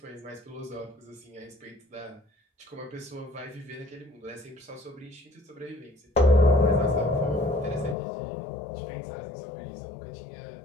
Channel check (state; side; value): drops out; right; at 8.0 s